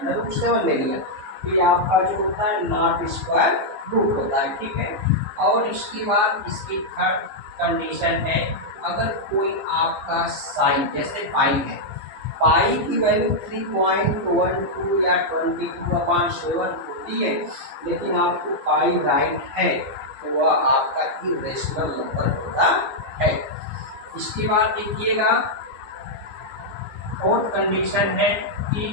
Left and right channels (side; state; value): left; late; 15 ms